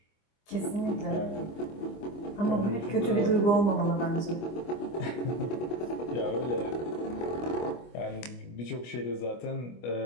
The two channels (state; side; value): late; right; 25 ms